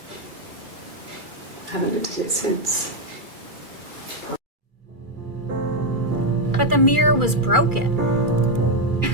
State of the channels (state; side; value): late; left; 2.3 ms